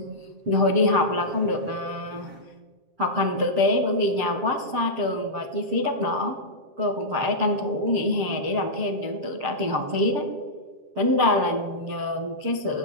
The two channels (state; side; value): late; left; 7.5 ms